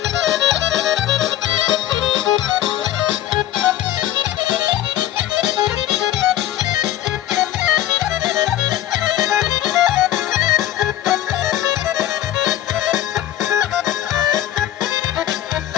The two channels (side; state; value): right; quieter; 12.8 dB